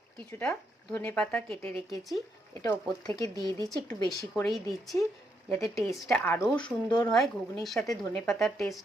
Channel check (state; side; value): normal; both; correlation 0.77